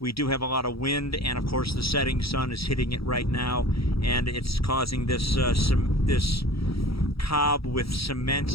do have a lot of wind, and of course the setting sun is hitting it right now, and it's causing this this cob with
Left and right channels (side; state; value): right; late; 0.76 ms